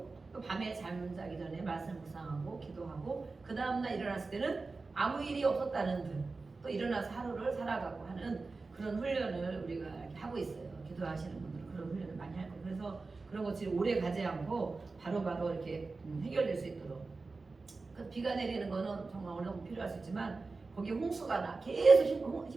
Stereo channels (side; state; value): left; quieter; 3.9 dB